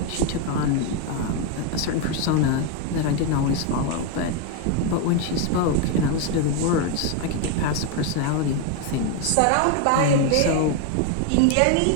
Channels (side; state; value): both; different; correlation 0.02